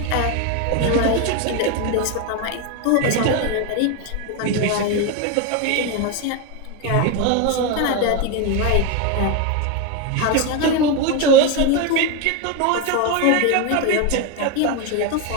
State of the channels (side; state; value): both; different; correlation 0.02